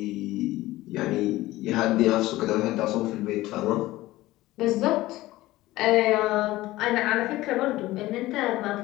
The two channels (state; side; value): quieter; right; 17.4 dB